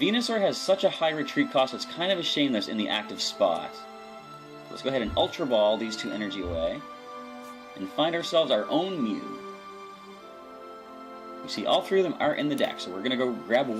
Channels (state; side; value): identical; both; correlation 1.00